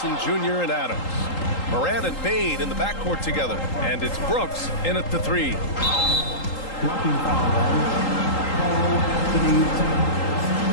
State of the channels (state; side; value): late; right; 3.8 ms